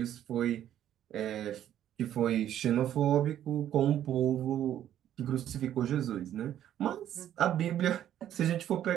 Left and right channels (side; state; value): left; quieter; 11.1 dB